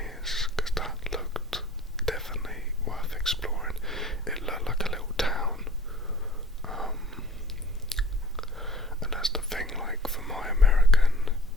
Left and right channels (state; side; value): normal; both; correlation 0.48